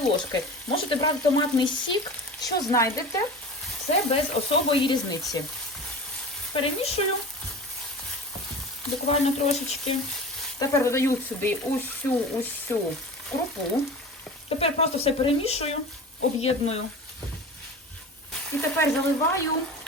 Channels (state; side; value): normal; both; correlation 0.34